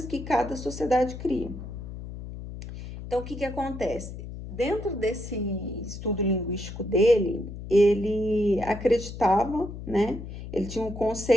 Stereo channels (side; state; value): left; noise; hum, 10 dB below the sound